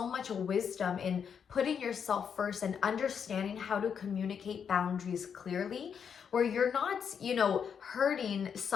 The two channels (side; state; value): right; quieter; 7.2 dB